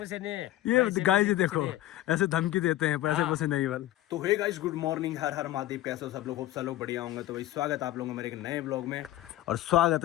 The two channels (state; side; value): quieter; right; 14.9 dB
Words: ये गाइस जी देखो ऐसे धमकी देते हैं, पैसे नहीं बल। तो हे गाइस गुड मॉर्निंग, हर हर महादेव, कैसे हो सब लोग? होप सब लोग बढ़िया होंगे। तो भाई स्वागत है आप लोगों का मेरे एक नए ब्लॉग में, और स्वागत